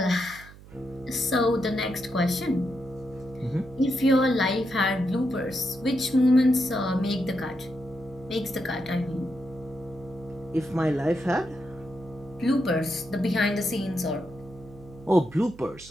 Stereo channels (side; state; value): right; noise; hum, 20 dB below the sound